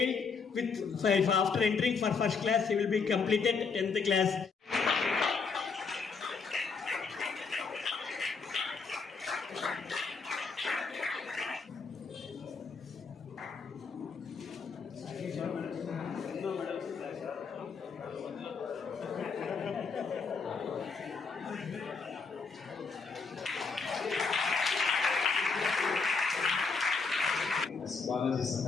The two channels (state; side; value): quieter; right; 4.9 dB